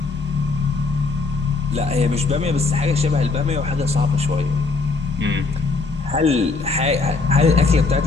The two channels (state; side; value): quieter; right; 3.9 dB